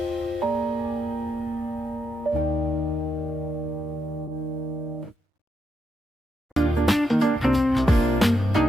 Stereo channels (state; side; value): normal; both; correlation 0.82